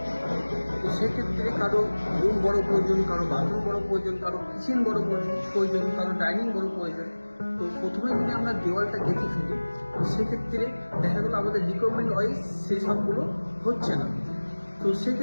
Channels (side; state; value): both; inverted; correlation -1.00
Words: তো সেক্ষেত্রে কারো রুম বড় প্রয়োজন, কারো বাথরুম বড় প্রয়োজন, কারো কিচেন বড় প্রয়োজন, কারো ডাইনিং বড় প্রয়োজন। তো প্রথমে যদি আমরা দেওয়ালটা কেটে ফেলি, তো সেক্ষেত্রে দেখা গেলো আমাদের রিকোয়ারমেন্ট ওয়াইজ সেই সবগুলো হচ্ছে না। তো